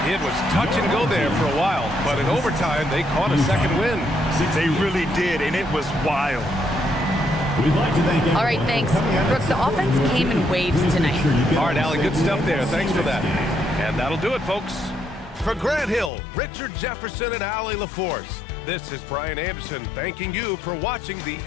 It was touch and go there for a while, but in overtime, they caught a second win. They really did, and it was wild. We'd like to thank All right, thanks. Brooke, the offense came in waves tonight. All right, Allie, good stuff there. Thanks for that. And that'll do it, folks. For Grant Hill, Richard Jefferson, and Allie LaForce, this is Brian Anderson thanking you for watching the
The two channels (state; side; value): drops out; right; at 16.1 s